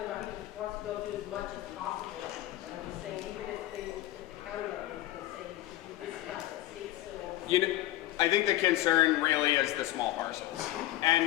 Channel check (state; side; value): quieter; right; 15.3 dB